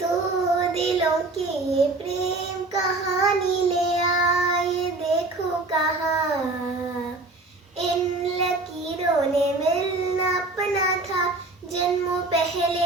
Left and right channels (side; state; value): left; quieter; 3.1 dB